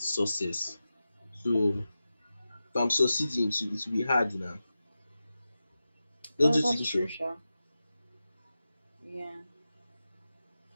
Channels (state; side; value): inverted; both; correlation -0.93